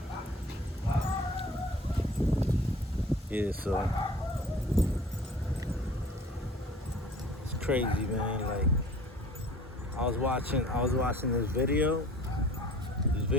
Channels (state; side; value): normal; both; correlation 0.47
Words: Yeah, so it's crazy, man. Like I was watching this video